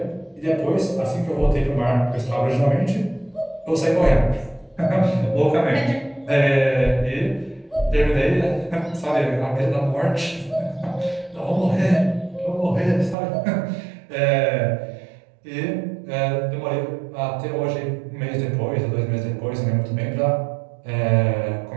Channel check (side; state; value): left; drops out; at 13.2 s